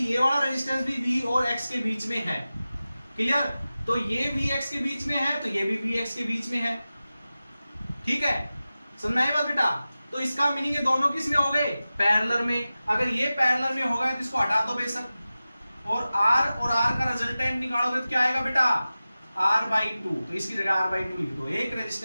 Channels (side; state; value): both; inverted; correlation -0.95